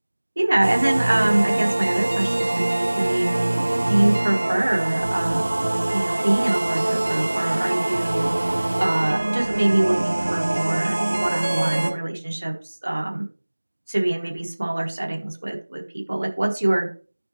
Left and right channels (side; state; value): both; inverted; correlation -1.00